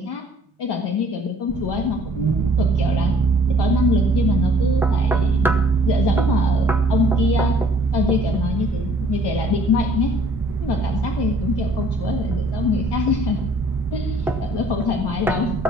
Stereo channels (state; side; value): normal; both; correlation 0.57